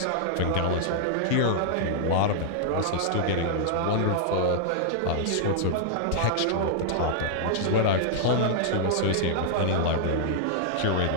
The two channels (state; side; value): different; both; correlation -0.01